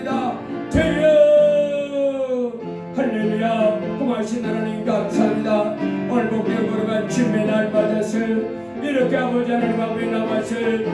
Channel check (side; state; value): both; identical; correlation 1.00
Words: 주여 할렐루야 고마우신 하나님 감사합니다. 오늘 복되어 걸어간 주님의 날 맞아서 이렇게 아버지 하나님 앞에 나와서